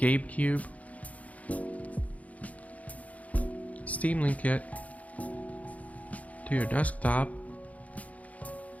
Cube, Steam Link it to your desktop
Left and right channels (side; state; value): right; late; 0.070 ms